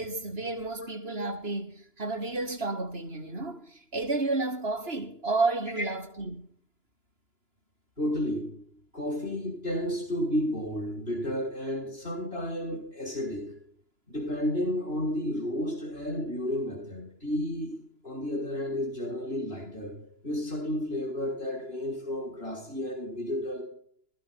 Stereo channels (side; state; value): left; late; 2.9 ms